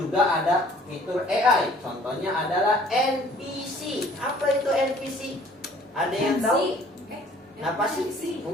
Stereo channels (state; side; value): normal; both; correlation 0.55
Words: ada fitur AI. Contohnya adalah NPC. Apa itu NPC? Ada yang tahu? Apa sih?